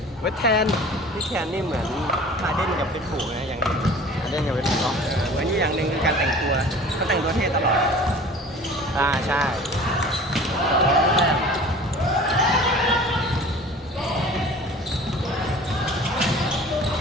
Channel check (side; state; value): both; normal; correlation 0.44